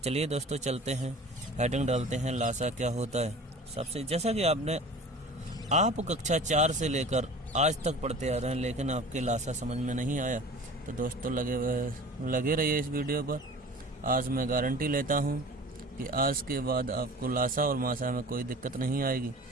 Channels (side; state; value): both; normal; correlation 0.41